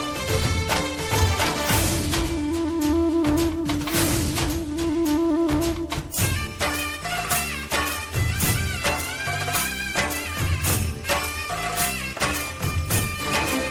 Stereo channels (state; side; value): identical; both; correlation 1.00